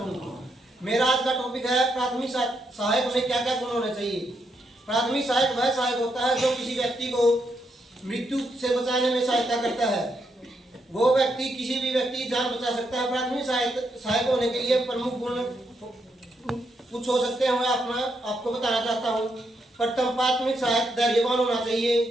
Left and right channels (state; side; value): normal; both; correlation 0.79